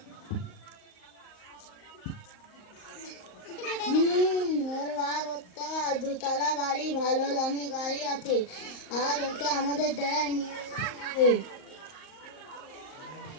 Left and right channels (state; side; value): late; right; 38 ms